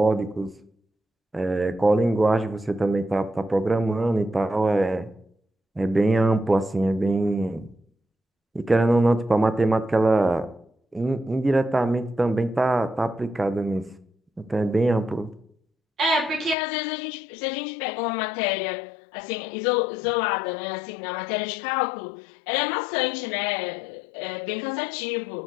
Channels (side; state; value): right; drops out; at 16.6 s